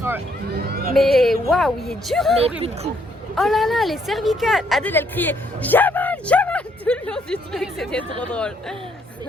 Mais waouh, il est dur. Mais plus de coups. Oh là là, les cervicales. Adèle, elle criait Jamal tout le long du truc, c'était trop drôle.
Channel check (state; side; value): normal; both; correlation 0.70